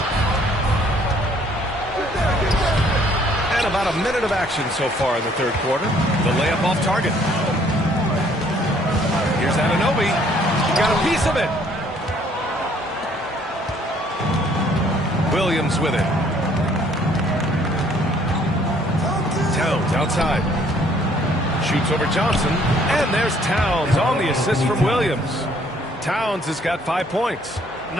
About a minute of action so far in the third quarter. The layup off target. Here's Anunoby. Got a piece of it. Williams with it. Towns outside. Shoots over Johnson. And there's Towns on the assist from Williams. Towns has got 5 points.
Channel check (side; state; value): both; normal; correlation 0.62